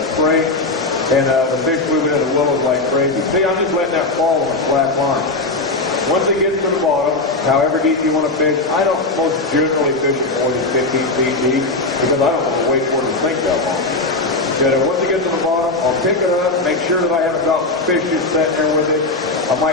spring, and the fish moving into the willows like crazy. See, I'm just letting that fall on a flat line. Once it gets to the bottom, however deep you want to fish, I don't most generally fish it more than 15 feet deep because I don't want to wait for it to sink that long. But once it gets to the bottom, I'll pick it up, make sure that I haven't got fish just sitting there with it. I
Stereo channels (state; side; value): quieter; right; 3.2 dB